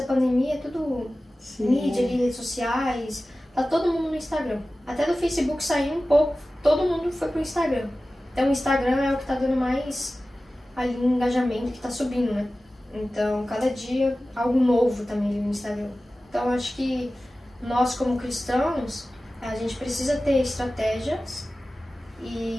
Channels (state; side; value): normal; both; correlation 0.96